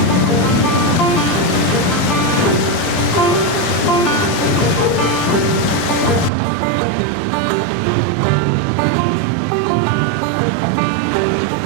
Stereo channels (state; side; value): drops out; left; at 6.3 s